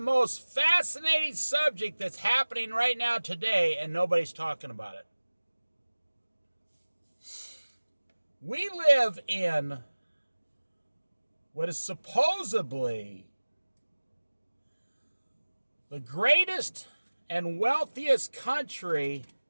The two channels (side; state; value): both; inverted; correlation -1.00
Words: fascinating subject that's happening right now today, and nobody's talking about it. We live in what is supposedly the greatest and wealthiest country